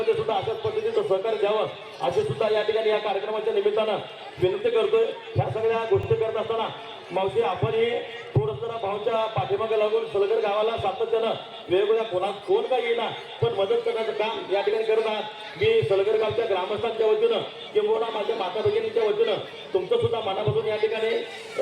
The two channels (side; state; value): both; identical; correlation 1.00